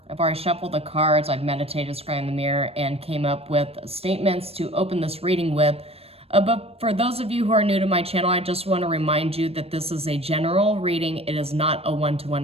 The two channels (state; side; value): late; left; 0.28 ms